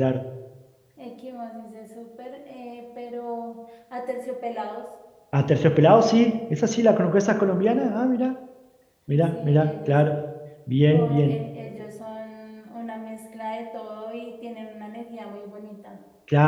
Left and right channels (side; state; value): both; identical; correlation 1.00